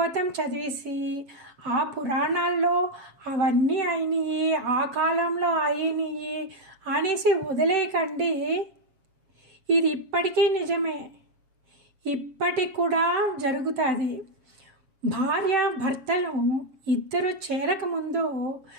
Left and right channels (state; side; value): late; left; 7.3 ms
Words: చదివేసి ఆ పురాణాల్లో అవన్నీ అయినాయి, ఆ కాలంలో అయినాయి అనేసి వదిలేయకండి. ఇది ఇప్పటికీ నిజమే, ఇప్పటికి కూడా జరుగుతుంది. భార్య భర్తలు ఇద్దరు చేరకముందు